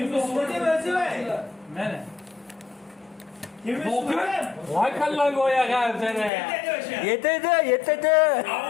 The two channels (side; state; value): right; drops out; at 6.3 s